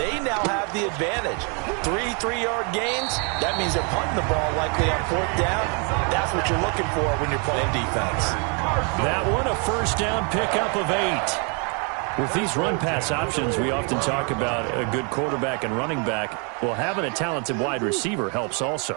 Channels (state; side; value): quieter; left; 36.3 dB